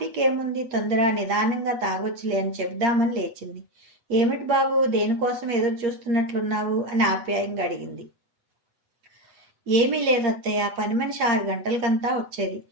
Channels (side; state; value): left; late; 8.6 ms